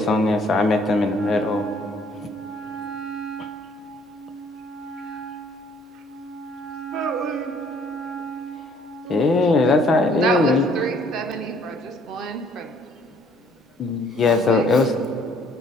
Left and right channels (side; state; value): both; normal; correlation 0.61